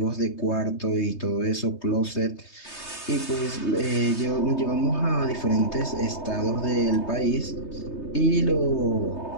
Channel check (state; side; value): late; right; 3.2 ms